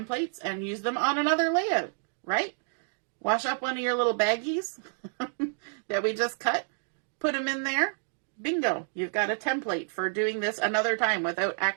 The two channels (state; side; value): silent; left; digital silence